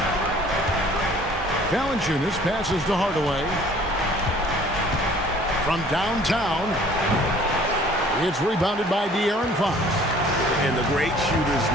Valanciunas passes to Hardaway. From downtown, it's rebounded by De'Aaron Fox. and the great shooters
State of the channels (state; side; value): normal; both; correlation 0.53